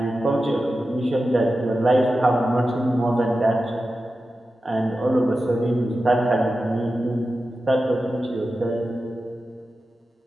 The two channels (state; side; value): normal; both; correlation 0.92